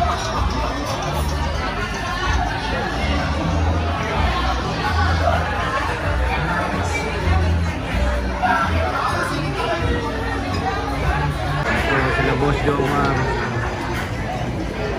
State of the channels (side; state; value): both; identical; correlation 1.00